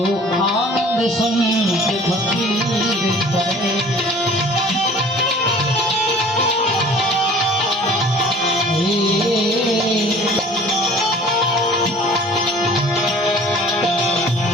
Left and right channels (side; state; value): both; normal; correlation 0.48